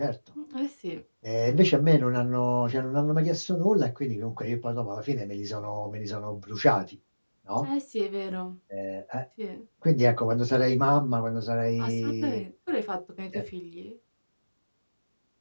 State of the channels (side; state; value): both; inverted; correlation -1.00